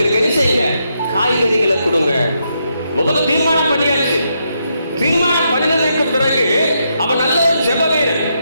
என்ன செய்யுங்க, காய்கறிகளை கொடுங்க. முதல்ல தீர்மானம் பண்ணியாச்சு. தீர்மானம் பண்ணினதுக்கு பிறகு அவன் நல்ல ஒரு ஜெப வீரன்.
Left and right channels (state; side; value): inverted; both; correlation -0.80